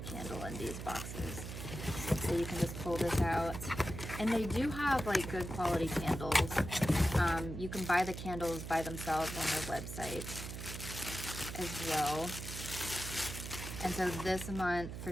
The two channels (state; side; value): noise; right; hum, 8 dB below the sound